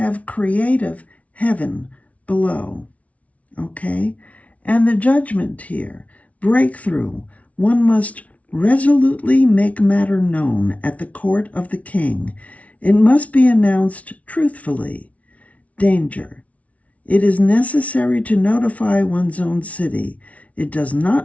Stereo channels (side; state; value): right; late; 0.066 ms